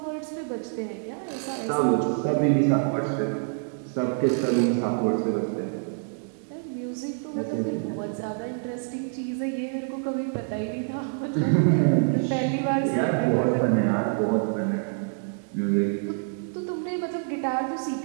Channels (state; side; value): silent; left; digital silence